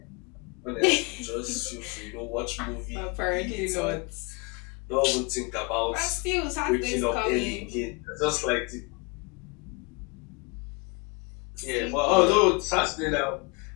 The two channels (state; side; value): quieter; right; 30.2 dB